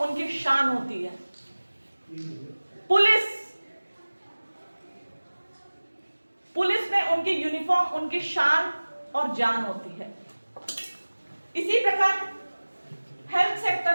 उनकी शान होती है। पुलिस में उनकी यूनिफॉर्म उनकी शान और जान होती है। इसी प्रकार हेल्थ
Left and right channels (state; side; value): inverted; both; correlation -1.00